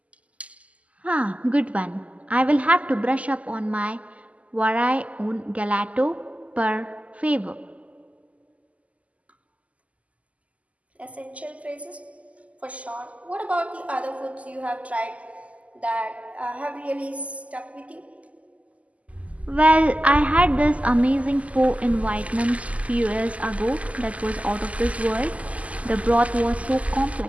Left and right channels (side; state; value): left; late; 0.069 ms